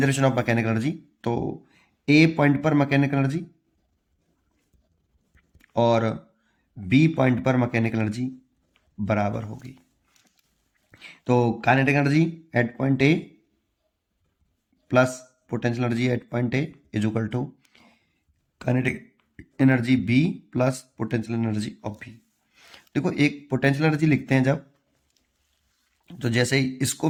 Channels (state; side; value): identical; both; correlation 1.00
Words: ऑफ मैकेनिकल एनर्जी, तो ए पॉइंट पर मैकेनिकल एनर्जी और बी पॉइंट पर मैकेनिकल एनर्जी बराबर होगी। तो kinetic energy at point A plus potential energy at point A is equal to kinetic energy B plus potential energy of B. देखो एक potential energy लिखते हैं जब, तो जैसे इसको